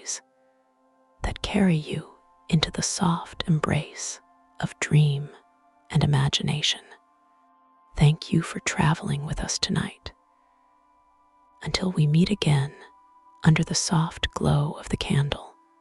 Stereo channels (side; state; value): both; identical; correlation 1.00